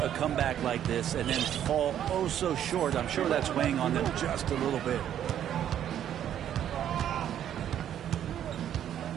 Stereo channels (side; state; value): left; quieter; 10.3 dB